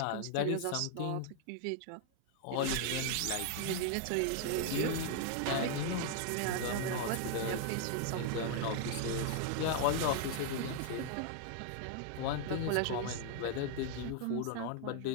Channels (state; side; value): different; both; correlation 0.00